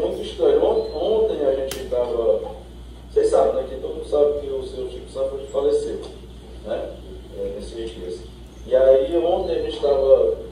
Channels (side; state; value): both; identical; correlation 1.00